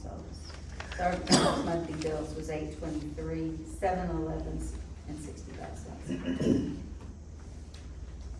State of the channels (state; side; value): identical; both; correlation 1.00